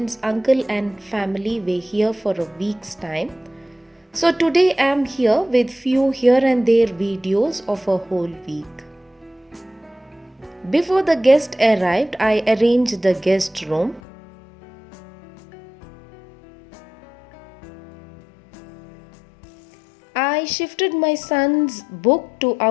uncle and family were here for a week's time. So today I am here with few here and there videos of a whole week. Before the guest arrived, I arranged the guest room. I shifted my son's book to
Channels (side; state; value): right; drops out; at 14.0 s